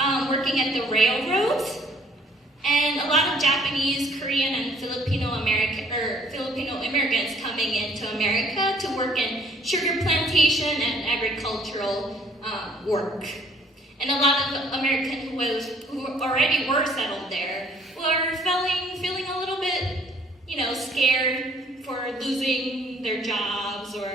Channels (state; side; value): normal; both; correlation 0.60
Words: working at the railroads. And a lot of Japanese, Korean, and Filipino immigrants coming into America to work in sugar plantation and agricultural work. And a lot of Americans who already were settled there were feeling a little bit, scared for losing their jobs